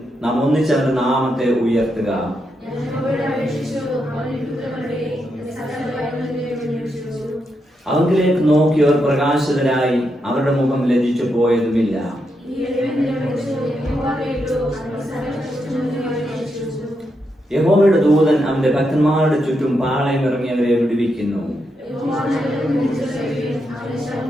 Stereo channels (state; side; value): normal; both; correlation 0.83